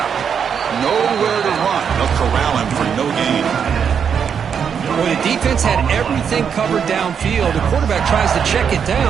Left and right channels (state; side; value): quieter; left; 7.3 dB